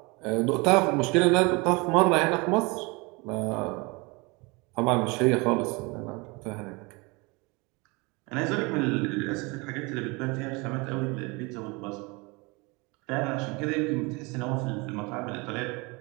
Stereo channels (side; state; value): left; quieter; 27.0 dB